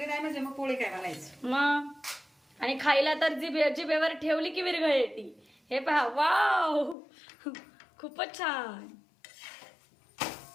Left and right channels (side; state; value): right; drops out; at 7.0 s